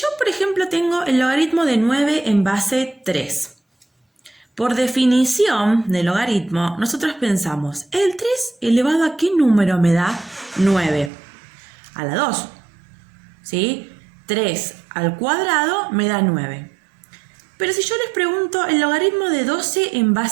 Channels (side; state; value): left; drops out; at 11.1 s